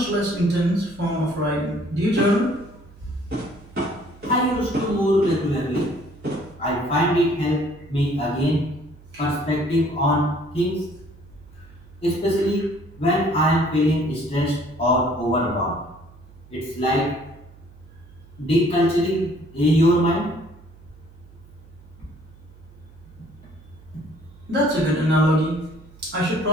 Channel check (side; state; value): right; noise; hum, 23 dB below the sound